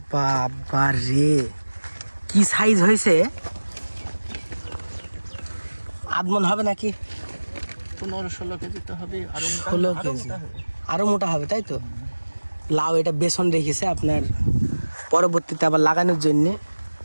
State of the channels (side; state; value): both; inverted; correlation -1.00